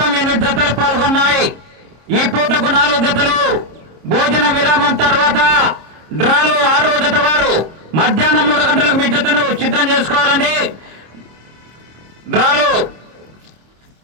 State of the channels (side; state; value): left; late; 26 ms